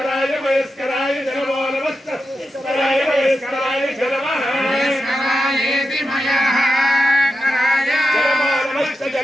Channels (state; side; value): normal; both; correlation 0.89